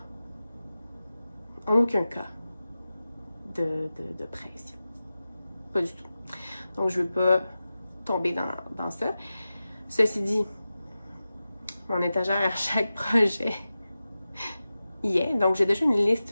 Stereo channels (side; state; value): both; inverted; correlation -0.94